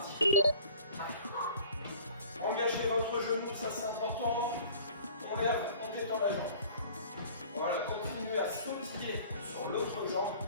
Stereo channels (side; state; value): both; inverted; correlation -0.49